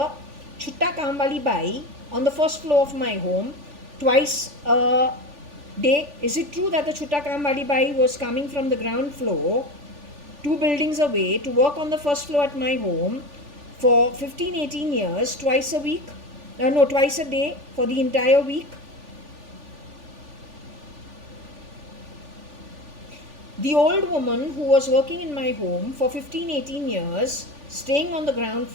Chutta Kamwali Bai on the first floor of my home twice a day. Is it true that the Chutta Kamwali Bai was coming from the ground floor 2 buildings away to work on the first floor at my home for 15-18 years, twice a week? No, twice a day for the entire week? The old woman who was working in my home for 15-18 years, staying on the ground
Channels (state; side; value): late; left; 3.4 ms